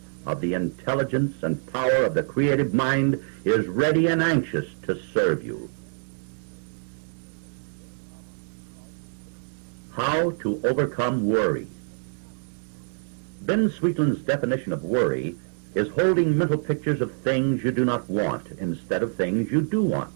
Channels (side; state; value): left; silent; digital silence